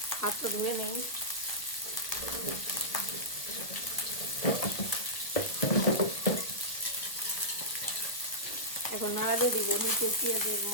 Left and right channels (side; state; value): right; late; 1.0 ms